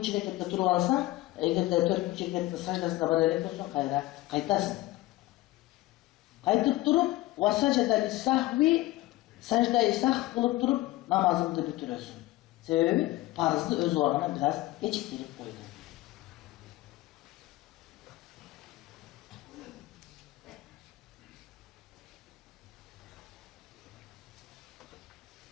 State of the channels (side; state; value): right; quieter; 18.0 dB